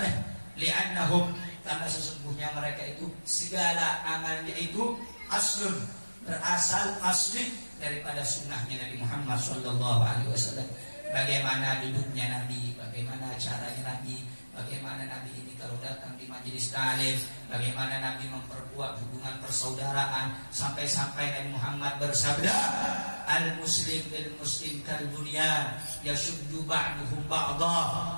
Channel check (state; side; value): inverted; both; correlation -1.00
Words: li'annahum, karena sesungguhnya mereka itu segala amalnya itu aslun, berasal asli daripada sunnahnya Nabi Muhammad sallallahu alaihi wasallam. Bagaimana duduknya Nabi, bagaimana caranya Nabi, bagaimana Nabi ini kalau datang di majelis taklim, bagaimana Nabi memperkuat hubungan persaudaraan, sampai-sampai Nabi Muhammad bersabda, al-muslim bil muslim kal bunyan yashuddu ba'duhum ba'dha.